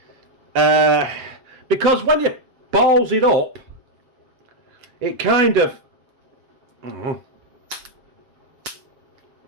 because when you balls it up, it kind of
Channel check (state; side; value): late; left; 7.4 ms